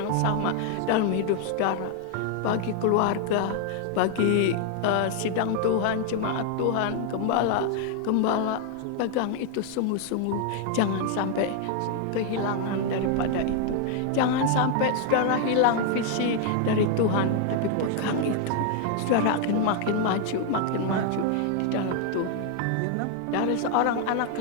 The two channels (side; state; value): both; different; correlation 0.00